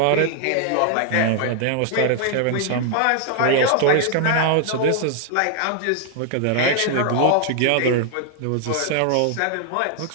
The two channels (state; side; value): different; both; correlation 0.00